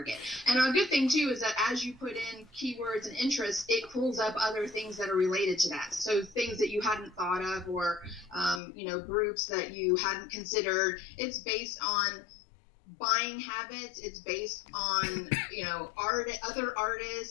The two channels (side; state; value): right; drops out; at 8.6 s